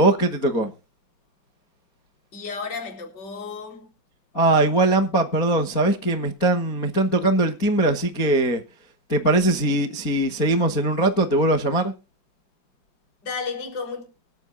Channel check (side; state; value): right; late; 4.3 ms